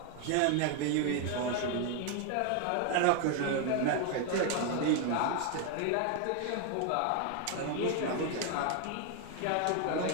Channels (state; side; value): different; both; correlation 0.01